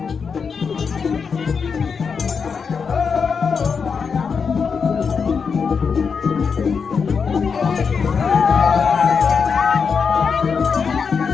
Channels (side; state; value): right; quieter; 5.8 dB